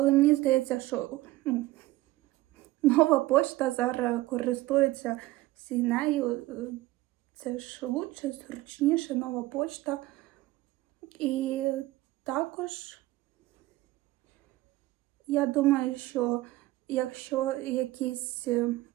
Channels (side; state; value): left; quieter; 17.9 dB